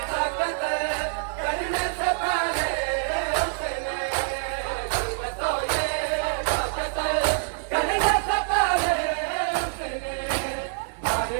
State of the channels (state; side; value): silent; left; digital silence